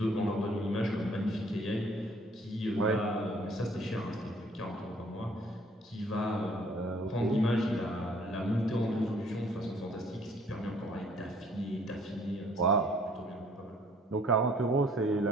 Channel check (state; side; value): normal; both; correlation 0.59